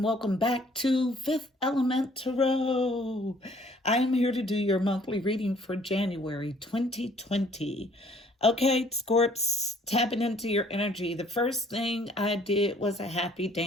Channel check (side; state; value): both; normal; correlation 0.59